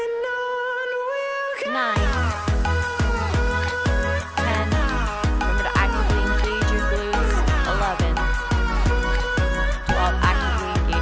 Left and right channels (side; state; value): both; identical; correlation 1.00